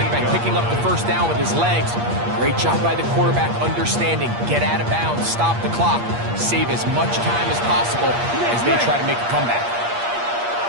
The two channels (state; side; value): late; left; 8.5 ms